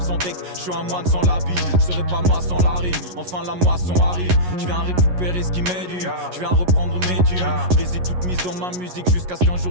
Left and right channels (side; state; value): left; late; 11 ms